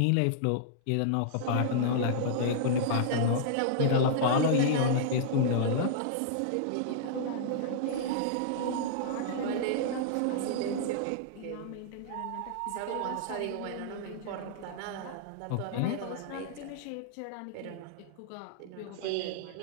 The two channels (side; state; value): both; different; correlation -0.02